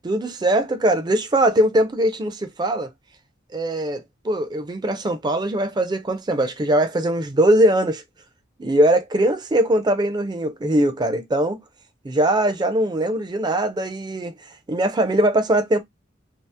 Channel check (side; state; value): both; normal; correlation 0.53